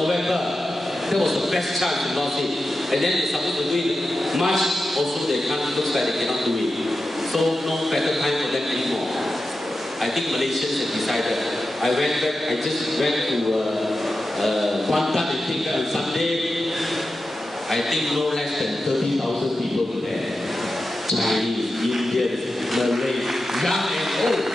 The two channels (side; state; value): both; normal; correlation 0.91